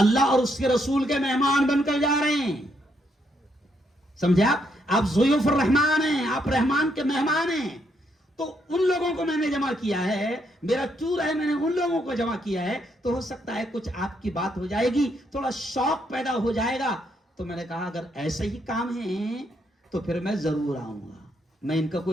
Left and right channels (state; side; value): normal; both; correlation 0.75